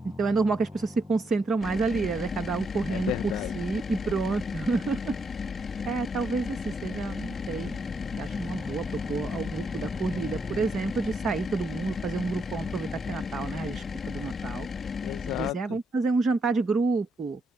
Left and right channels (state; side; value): normal; both; correlation 0.78